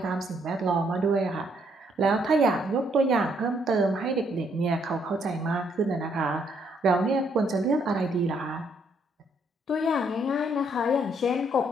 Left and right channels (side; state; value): both; normal; correlation 0.70